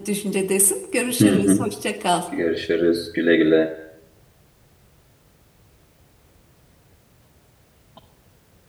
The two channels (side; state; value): both; identical; correlation 1.00